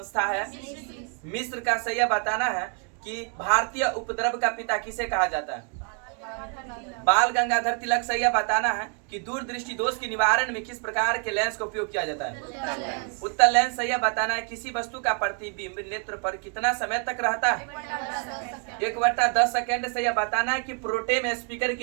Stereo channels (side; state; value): left; quieter; 38.9 dB